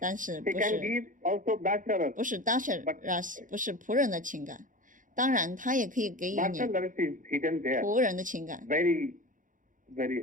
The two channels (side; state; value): left; late; 0.38 ms